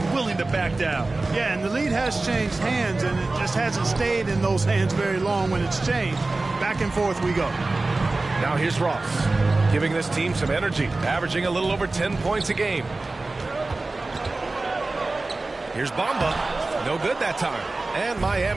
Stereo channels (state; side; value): quieter; left; 3.3 dB